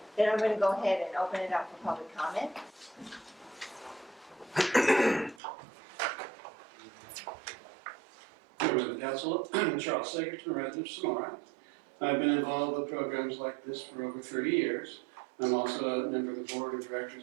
then I'm going to go ahead and open it up for public comment. Members of the council, Charles Sagerton, resident of Sonora. I've been involved with programs like this for over 30 years. I'm also a member of the board of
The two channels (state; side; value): drops out; left; at 5.4 s